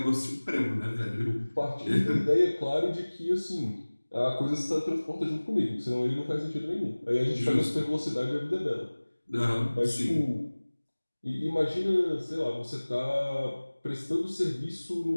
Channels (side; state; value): both; inverted; correlation -1.00